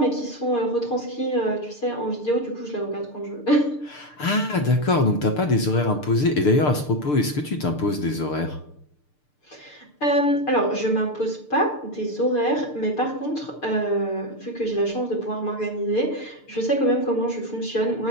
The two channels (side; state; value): right; late; 6.7 ms